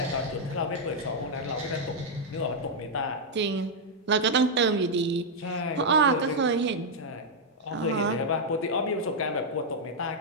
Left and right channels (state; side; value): normal; both; correlation -0.03